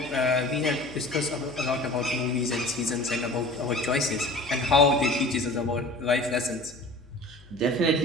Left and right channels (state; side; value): noise; left; hum, 23 dB below the sound